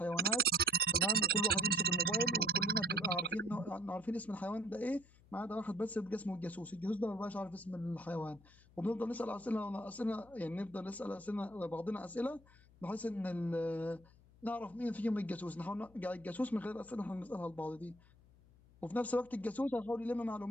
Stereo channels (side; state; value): left; noise; hum, 25 dB below the sound